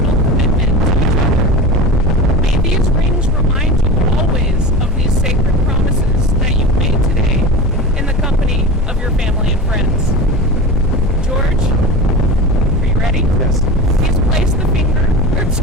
commitment to each other. May these rings remind you always of these sacred promises that you've made today in the company of your family and friends. George, are you ready? Yes. Please place the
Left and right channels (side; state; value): both; normal; correlation 0.30